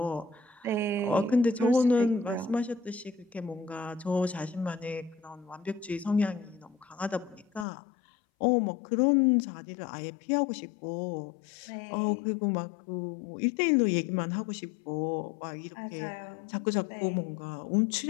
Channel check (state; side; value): drops out; right; at 7.7 s